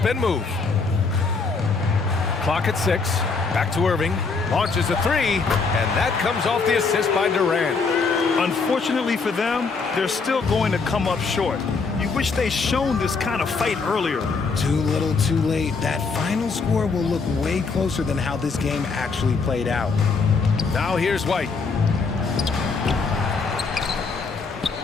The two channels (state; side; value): quieter; right; 4.6 dB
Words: move. Clock at 6. Back to Irving. Launches a 3. And that comes off the assist by Durant. Unfortunately for them, they're still going to come up short. You wish they'd shown this kind of fight earlier. Too little, too late. That final score will look way closer than how this game actually played out. Now here's White.